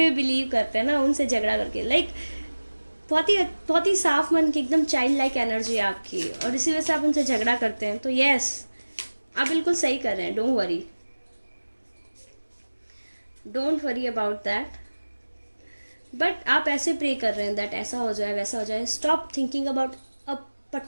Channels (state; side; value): inverted; both; correlation -1.00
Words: भी बिलीव करते हैं ना, उनसे झगड़ा करके. लाइक बहुत ही साफ मन की एकदम चाइल्ड लाइक एनर्जी है आपकी, और इसी वजह से आप उनसे झगड़ा करते हैं. तो यस, आप बिल्कुल सही कर रहे हैं. Don't worry about that. But आप ऐसे प्रे कर रहे हैं दैट ऐसा हो जाए, वैसा हो जाए. Stop thinking about a